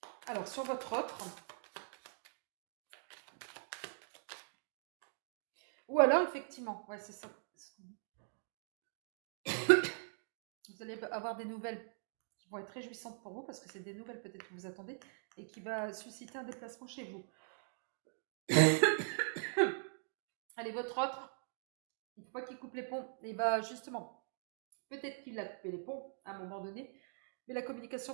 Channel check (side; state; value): left; silent; digital silence